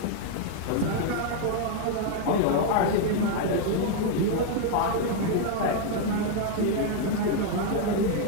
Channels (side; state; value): both; different; correlation 0.00